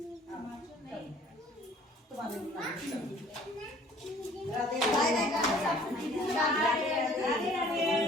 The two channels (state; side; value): normal; both; correlation 0.54